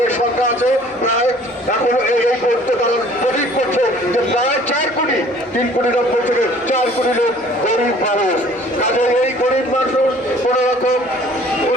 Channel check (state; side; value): normal; both; correlation 0.53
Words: সংখ্যা আছে প্রায়, এখন এই করতে তারা প্রতীক করছে যে প্রায় 4 কোটি, 3 কোটি 90 থেকে 4 কোটি লোক গরিব মানুষ। কাজে এই গরিব মানুষ কোন রকম